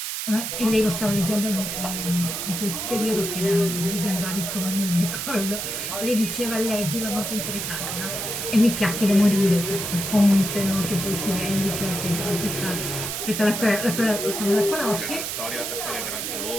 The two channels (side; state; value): right; noise; hiss, 4 dB below the sound